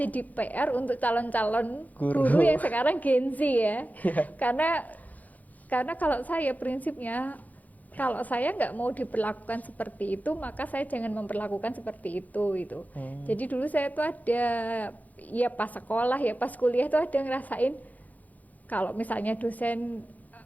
PR untuk calon-calon guru yang sekarang Gen Z ya. Karena kalau saya prinsipnya, kalau saya nggak mau diperlakukan seperti itu, maka saya jangan memperlakukan seperti itu gitu. Jadi dulu saya tuh ada, ya pas sekolah ya pas kuliah tuh ada ngerasain kalau misalnya dosen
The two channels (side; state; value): right; late; 0.079 ms